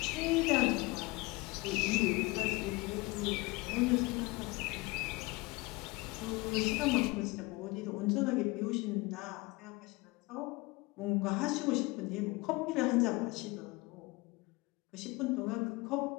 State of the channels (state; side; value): quieter; right; 24.0 dB